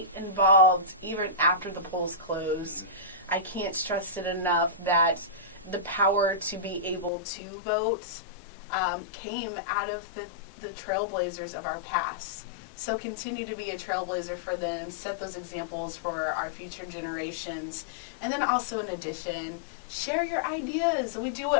involved even after the polls close. I can't stress it enough that the power to be able to vote came out of the trailblazers of our past. So continue to be a trailblazer for them. Set those examples for our future generations. And then also, in addition, share your ideas. We do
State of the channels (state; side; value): drops out; right; at 7.1 s